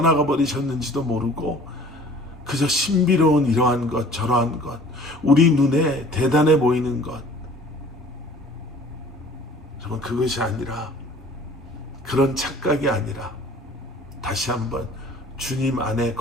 버리셨는지도 모르고 그저 신비로운 이러한 것 저러한 것, 우리 눈에 대단해 보이는 것, 여러분 그것이 아니라, 그런 착각이 아니라 다시 한번 주님 안에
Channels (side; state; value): both; normal; correlation 0.50